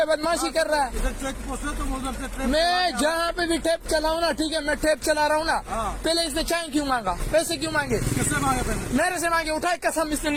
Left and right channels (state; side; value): identical; both; correlation 1.00